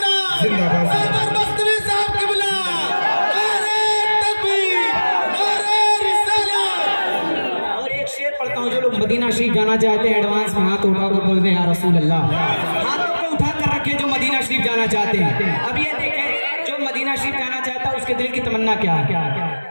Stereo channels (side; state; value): both; inverted; correlation -1.00